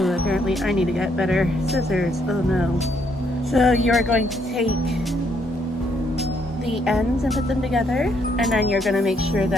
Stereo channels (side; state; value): both; normal; correlation 0.72